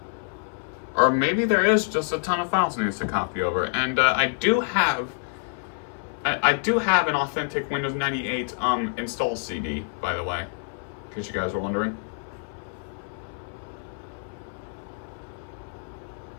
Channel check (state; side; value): silent; right; 60 dB below the other